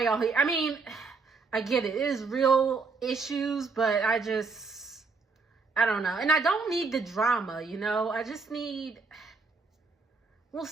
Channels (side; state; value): left; quieter; 4.4 dB